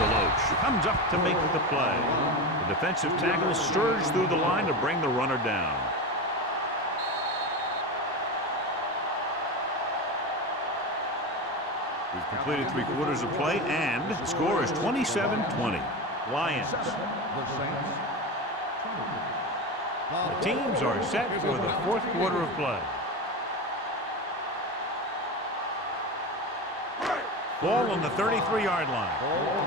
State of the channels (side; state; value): both; normal; correlation 0.22